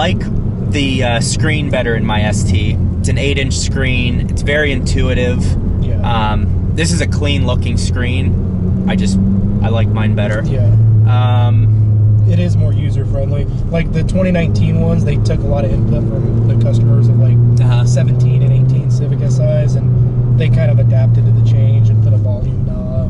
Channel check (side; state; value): both; identical; correlation 1.00